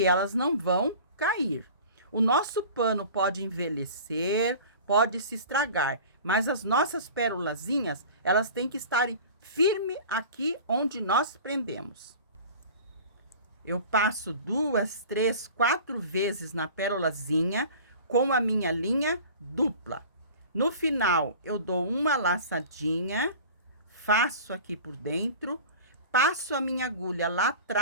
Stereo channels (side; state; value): both; inverted; correlation -0.40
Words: elas não vão cair. O nosso pano pode envelhecer, pode se estragar, mas as nossas pérolazinhas, elas têm que estar firme aqui onde nós prendemos. Eu passo 2, 3, 4 vezes na pérolazinha com a minha linha dupla. No final, eu dou uma laçadinha, faço aqui por dentro, passo a minha agulha lá